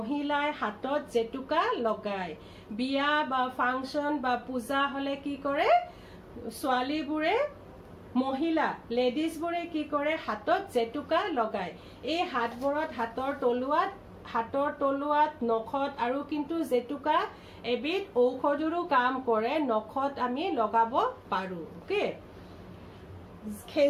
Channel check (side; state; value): both; identical; correlation 1.00